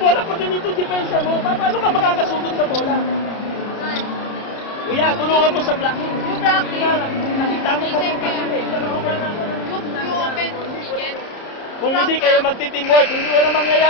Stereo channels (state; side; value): late; right; 30 ms